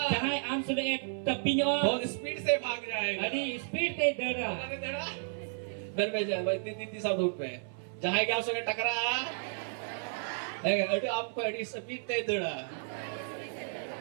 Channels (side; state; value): left; silent; 56 dB below the other